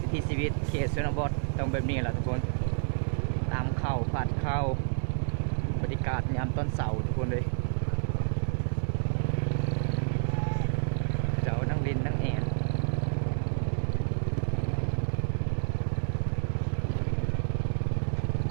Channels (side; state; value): left; silent; 58 dB below the other